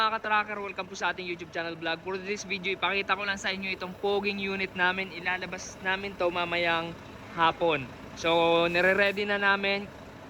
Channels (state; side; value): identical; both; correlation 1.00